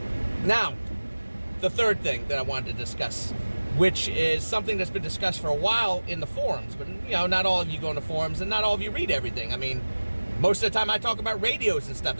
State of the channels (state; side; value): inverted; both; correlation -1.00